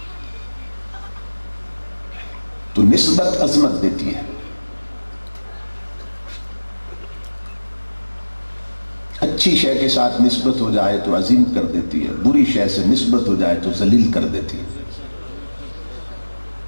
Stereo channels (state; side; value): inverted; both; correlation -1.00